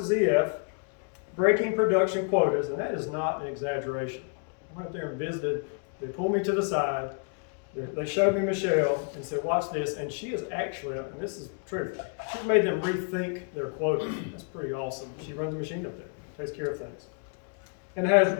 EF, breaking production quotas, and that is not an exaggeration. I went up there and visited. They pulled me to the side. They showed me Michelle and said, watch this, and she is actually, and this is true, she's made them rethink their quotas. That's pretty awesome. She runs a machine up there, takes care of things, and has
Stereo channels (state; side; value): quieter; right; 38.8 dB